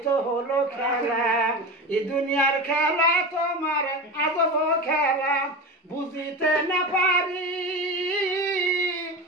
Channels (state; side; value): normal; both; correlation 0.25